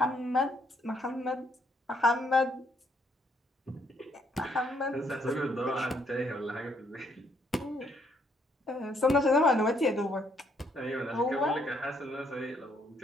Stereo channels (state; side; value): normal; both; correlation 0.70